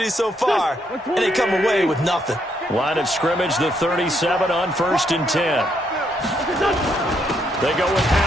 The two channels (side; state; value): both; normal; correlation 0.74